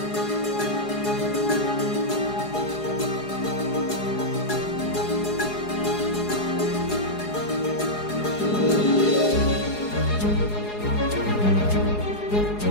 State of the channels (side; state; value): right; late; 4.8 ms